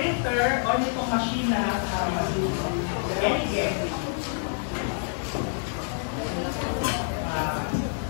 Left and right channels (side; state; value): right; silent; digital silence